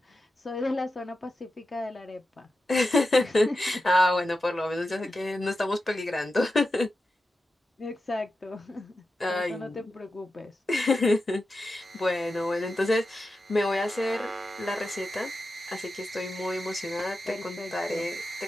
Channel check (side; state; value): both; normal; correlation 0.91